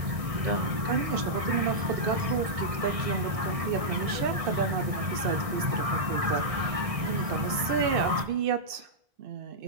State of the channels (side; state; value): left; late; 1.6 ms